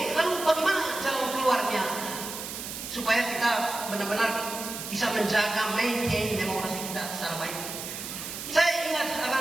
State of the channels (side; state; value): right; noise; hiss, 8 dB below the sound